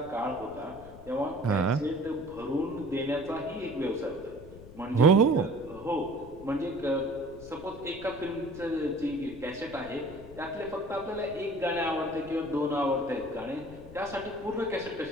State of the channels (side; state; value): left; noise; rumble, 17 dB below the sound